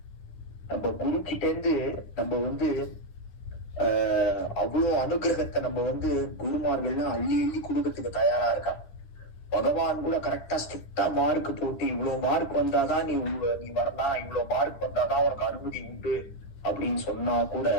நம்ம குரு கிட்ட இருந்து நம்ம வந்து அவ்வளவு அனுகிரகத்தை நம்ம வந்து குருமார்கள்லாம் அள்ளி அள்ளி கொடுக்கறதுக்கு தயாரா இருக்கா. பகவான் கூட கரெக்டா ஸ்ட்ரிக்டா மார்க் போட்டு இவ்வளவு மார்க் வந்தாதான் நீ வரலாம், இவ்வளவு மார்க் வந்தாதான் உனக்கு அனுமதி உண்டு அப்படின்னு சொன்னா கூட,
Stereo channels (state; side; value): late; right; 10 ms